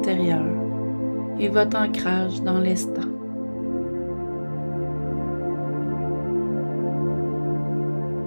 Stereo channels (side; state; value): both; inverted; correlation -1.00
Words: et votre ancrage dans l'instant.